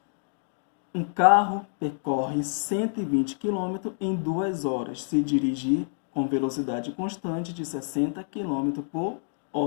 Um carro percorre 120 km em 2 horas, se dirigir com velocidade constante de 60 km por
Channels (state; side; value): silent; right; digital silence